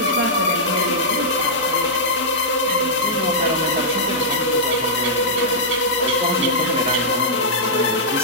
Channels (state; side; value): normal; both; correlation -0.10